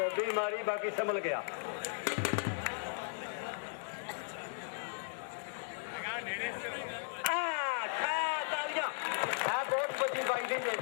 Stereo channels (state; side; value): silent; right; digital silence